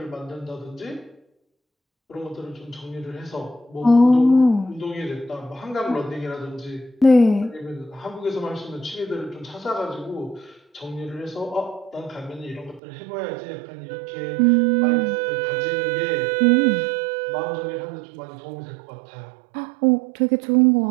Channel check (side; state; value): left; drops out; at 12.8 s